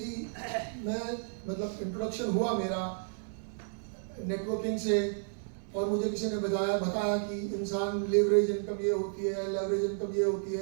मतलब इंट्रोडक्शन हुआ मेरा नेटवर्किंग से और मुझे किसी ने बताया कि इंसान लेवरेज इनकम ये होती है, लेवरेज इनकम ये होती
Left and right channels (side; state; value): left; silent; digital silence